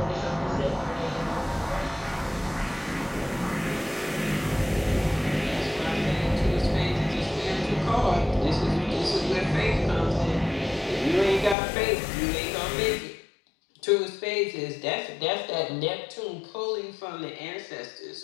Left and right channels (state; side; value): drops out; right; at 11.6 s